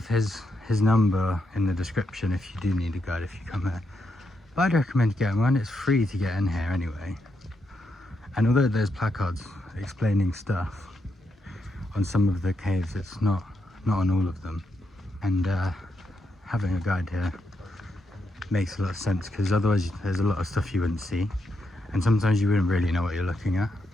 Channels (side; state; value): both; normal; correlation 0.82